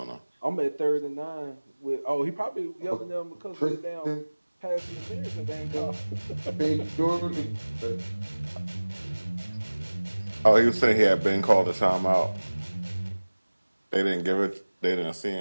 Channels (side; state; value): both; inverted; correlation -1.00